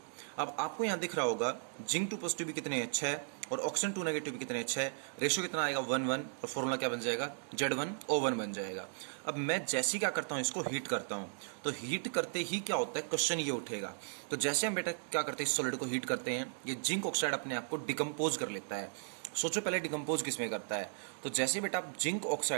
अब आपको यहाँ दिख रहा होगा जिंक 2 पॉजिटिव भी कितने हैं, 6, और ऑक्सीजन 2 नेगेटिव भी कितने हैं, 6। रेशियो कितना आएगा, 1:1, और फॉर्मूला क्या बन जाएगा, Z1O1 बन जाएगा। अब मैं जैसे ही क्या करता हूँ, इसको हीट करता हूँ, तो हीट करते ही क्या होता है, क्वेश्चन ये उठेगा। तो जैसे हम बेटा क्या करते हैं, इस सॉलिड को हीट करते हैं, ये जिंक ऑक्साइड अपने आप को डिकम्पोज कर लेता है। सोचो पहले डिकम्पोज किस में करता है, तो जैसे बेटा आप जिंक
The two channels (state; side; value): silent; left; digital silence